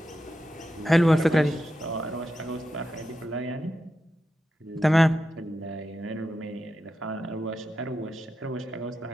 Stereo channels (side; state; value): both; normal; correlation 0.88